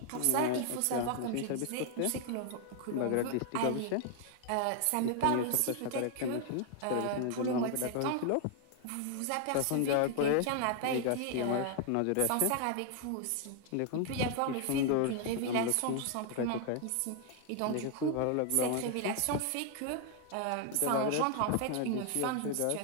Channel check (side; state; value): both; different; correlation 0.00